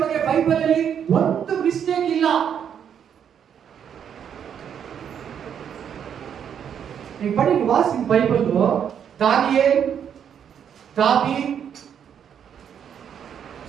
ಬಗ್ಗೆ ಬೈಬಲ್ ಅಲ್ಲಿ ಒಂದು ಮಿಸ್ಟೇಕ್ ಇಲ್ಲ. ನೀವು ಪಡಿ ವಾಸಿ ಬೈಬಲ್. ದಾನಿಯೇಲ್, ದಾವೀದ್,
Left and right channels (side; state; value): left; quieter; 8.4 dB